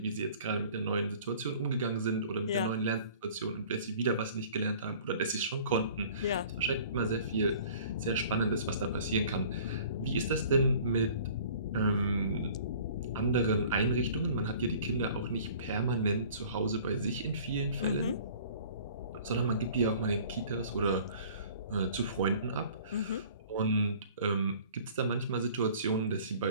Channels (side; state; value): both; inverted; correlation -0.49